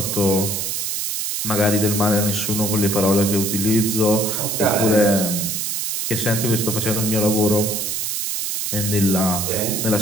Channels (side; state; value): right; noise; hiss, 2 dB below the sound